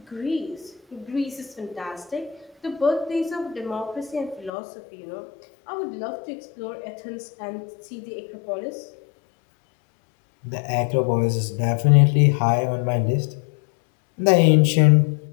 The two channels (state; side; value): drops out; right; at 4.5 s